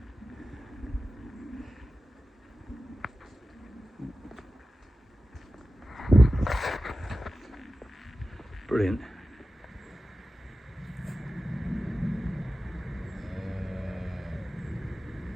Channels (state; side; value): normal; both; correlation 0.94